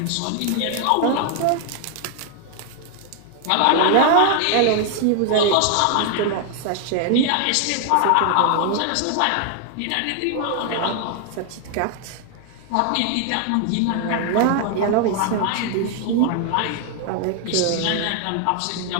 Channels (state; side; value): different; both; correlation 0.00